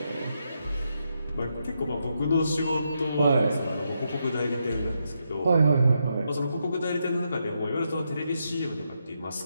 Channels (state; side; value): inverted; both; correlation -0.82